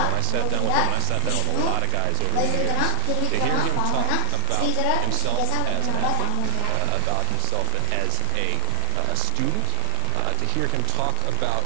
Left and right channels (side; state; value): both; different; correlation 0.01